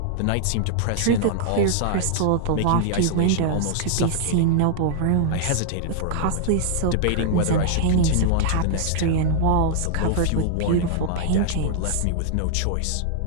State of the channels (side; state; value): both; different; correlation -0.01